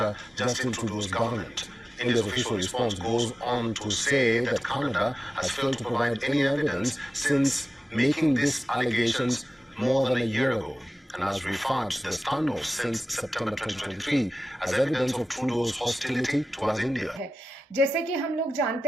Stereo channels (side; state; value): both; normal; correlation 0.95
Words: Justin Trudeau's government. India's official response goes on to say that Canada has failed to provide any evidence since making these allegations more than a year ago, and has referred to the standoff since September 2023 as evidence of Trudeau's hostility towards India. जैसे कि हम लोग